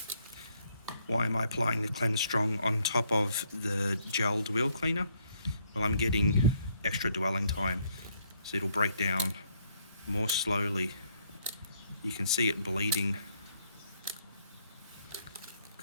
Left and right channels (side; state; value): both; inverted; correlation -0.70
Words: Why am I applying the Cleanse Strong on top of the gelled wheel cleaner? Well, I'm getting extra dwelling time, so it'll break down more slowly. You can see it bleeding.